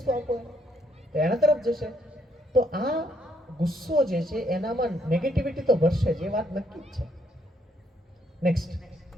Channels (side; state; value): both; normal; correlation 0.71